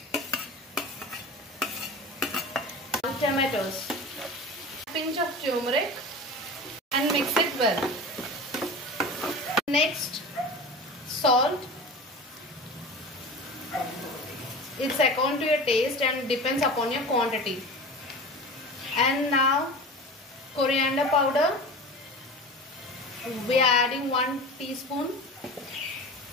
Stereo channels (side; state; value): both; normal; correlation 0.33